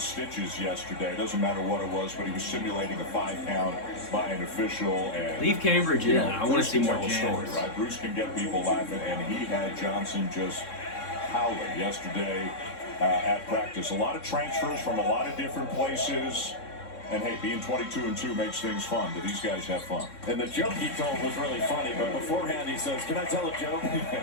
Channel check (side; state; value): right; late; 3.6 ms